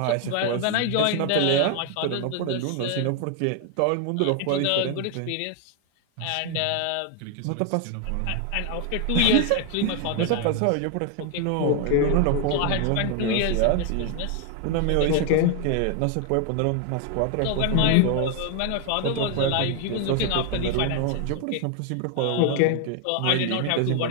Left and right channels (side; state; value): both; different; correlation 0.00